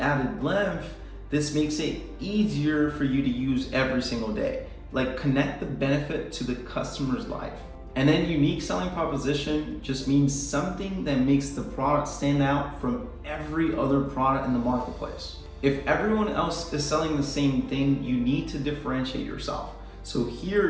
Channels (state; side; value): identical; both; correlation 1.00